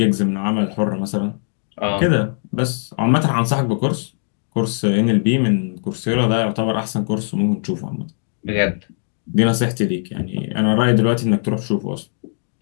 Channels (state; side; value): silent; right; digital silence